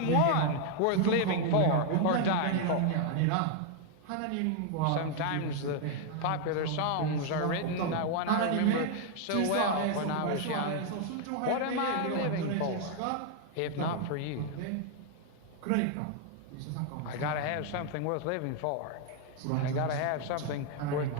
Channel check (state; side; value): different; both; correlation 0.00